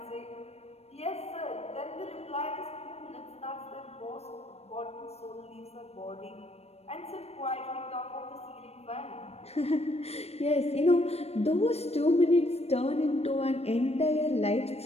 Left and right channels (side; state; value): right; late; 0.30 ms